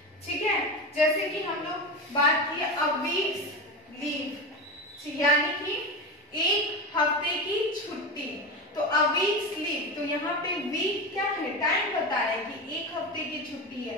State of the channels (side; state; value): both; normal; correlation 0.21